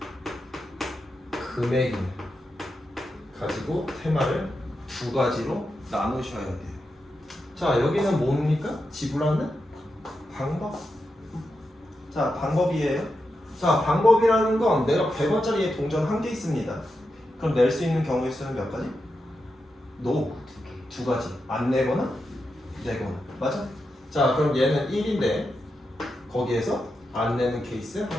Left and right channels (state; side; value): normal; both; correlation 0.87